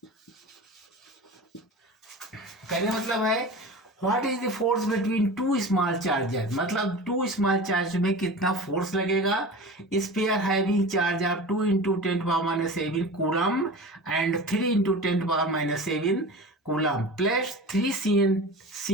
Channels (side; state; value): both; normal; correlation 0.34